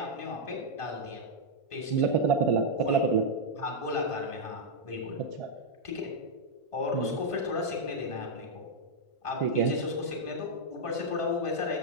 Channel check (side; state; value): right; late; 1.5 ms